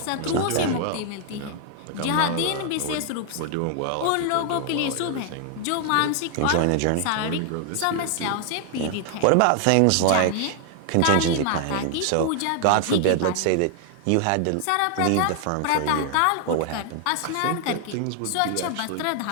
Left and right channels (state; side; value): different; both; correlation 0.00